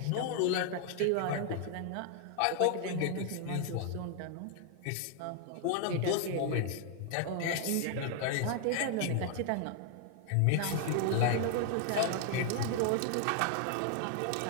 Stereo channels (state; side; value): different; both; correlation 0.00